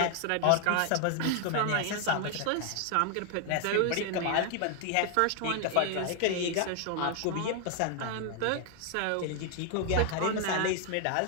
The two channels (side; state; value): both; different; correlation 0.00